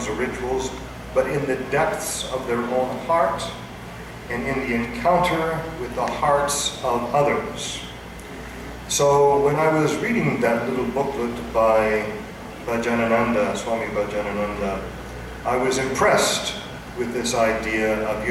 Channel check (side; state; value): both; identical; correlation 1.00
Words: or rituals, but in the depths of their own heart and in the encounter with the hearts of others. So when I was reading that little booklet by Bhajanananda, Swami Bhajanananda, I was impressed with this idea of